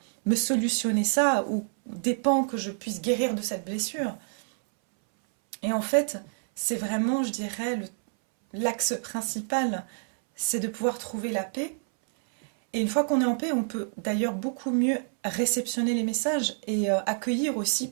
me solutionner ça, ou dépend que je puisse guérir de cette blessure. Et en fait, c'est vraiment, je dirais, l'axe principal, c'est de pouvoir trouver la paix. Et une fois qu'on est en paix, on peut d'ailleurs beaucoup mieux réceptionner les messages et accueillir aussi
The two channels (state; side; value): silent; left; 60 dB below the other